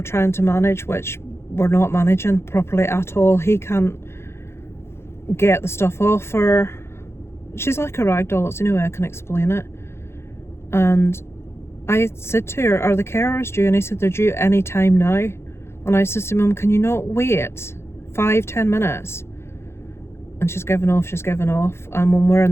to manage, which we're not managing properly at all. He can't get the stuff off her. She's like a rag doll, it's the only way I can explain it. And I said to her, are the carers due? And he said they're due any time now. And I said to Mum, can you not wait 5-10 minutes? And she's given off. And when we're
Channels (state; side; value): late; right; 0.12 ms